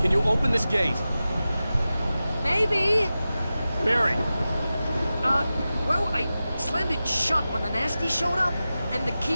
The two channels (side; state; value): both; inverted; correlation -0.94